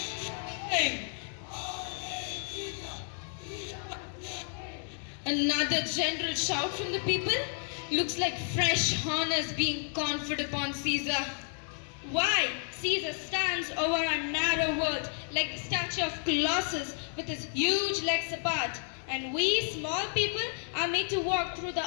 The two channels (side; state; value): right; silent; 57 dB below the other